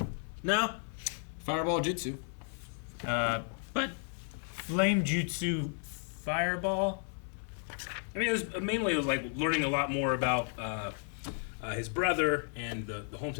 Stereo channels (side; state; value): right; silent; 55 dB below the other